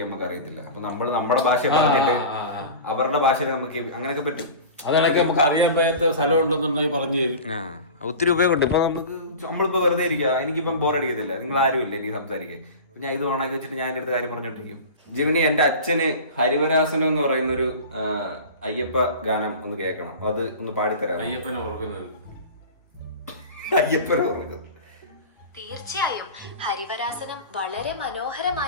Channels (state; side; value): inverted; both; correlation -0.34